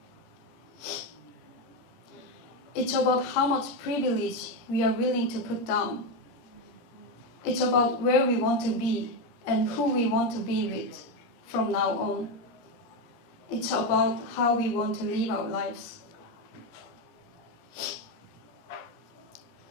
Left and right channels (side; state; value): right; late; 17 ms